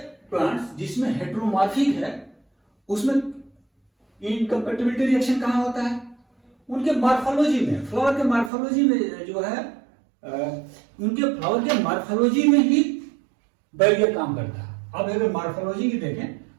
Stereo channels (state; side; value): drops out; left; at 8.5 s